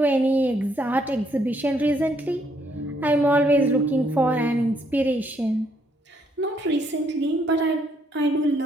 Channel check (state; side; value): normal; both; correlation 0.71